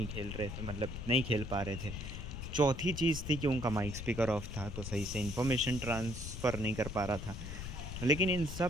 खेल रहे थे, मतलब नहीं खेल पा रहे थे। चौथी चीज़ थी कि उनका माइक स्पीकर ऑफ था तो सही से इन्फॉर्मेशन ट्रांसफ़र नहीं कर पा रहा था। लेकिन इन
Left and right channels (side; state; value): left; noise; rumble, 7 dB below the sound